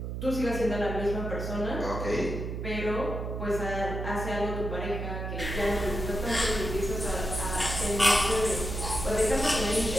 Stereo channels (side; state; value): right; noise; hum, 4 dB below the sound